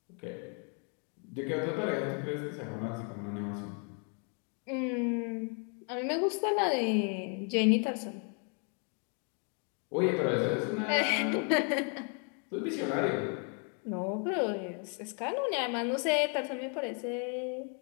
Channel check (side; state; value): right; quieter; 39.7 dB